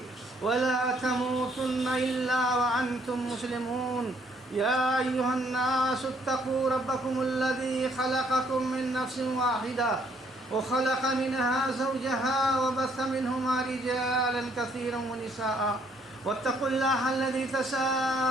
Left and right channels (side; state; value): both; normal; correlation 0.66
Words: ولا تموتن إلا وأنتم مسلمون يا أيها الناس اتقوا ربكم الذي خلقكم من نفس واحدة وخلق منها زوجها وبث منهما رجالا كثيرا ونساء واتقوا الله الذي